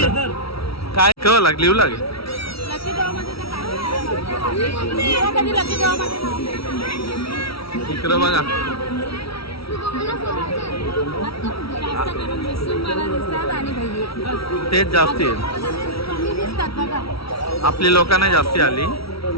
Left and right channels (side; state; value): right; late; 0.76 ms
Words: काय केव्हा लागली येऊ लागेल. लकी ड्रॉ मध्ये तर काय कधी लकी ड्रॉ मध्ये इकडं बघा जास्त करून मिसून मला दिसतात आणि भैया तेच जास्ती आहे. कमी दिसतात बघा. आपली लोकांना जास्ती आली.